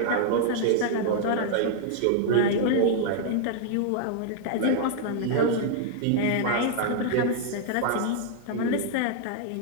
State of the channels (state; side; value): different; both; correlation -0.01